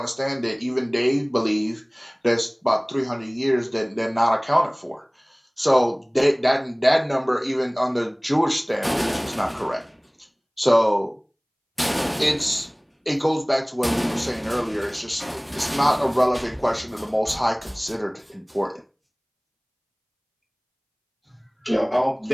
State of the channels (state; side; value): identical; both; correlation 1.00